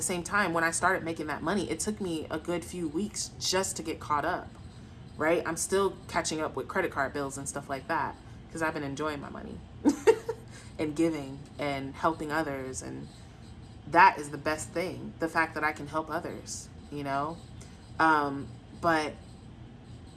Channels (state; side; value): identical; both; correlation 1.00